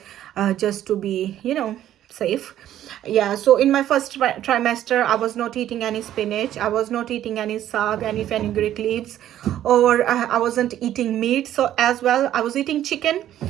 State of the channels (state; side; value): quieter; left; 12.0 dB